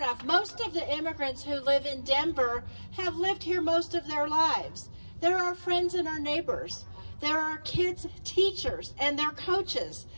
of. Most of the immigrants who live in Denver have lived here most of their lives. They're our friends and our neighbors. They're our kids' teachers and their coaches.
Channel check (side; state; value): both; inverted; correlation -1.00